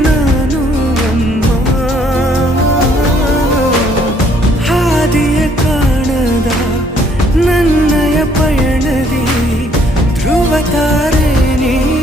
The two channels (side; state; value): both; normal; correlation 0.65